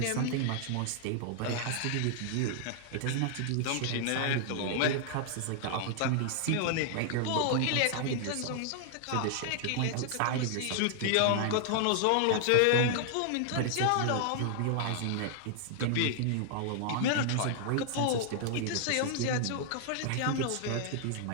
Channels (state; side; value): different; both; correlation -0.01